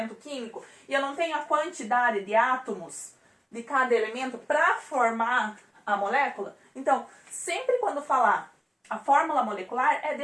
químico e eu não tenho a quantidade de átomos de cada elemento para formar a molécula. Então, sempre quando falar a fórmula molecular, é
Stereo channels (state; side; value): identical; both; correlation 1.00